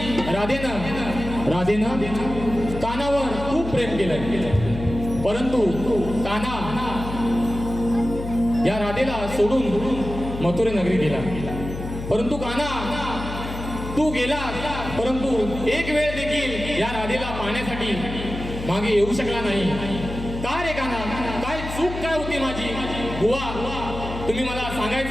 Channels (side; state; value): left; noise; hum, 8 dB below the sound